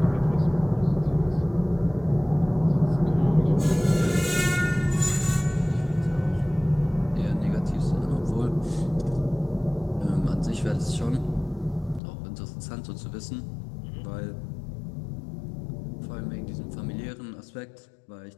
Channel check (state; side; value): drops out; right; at 12.0 s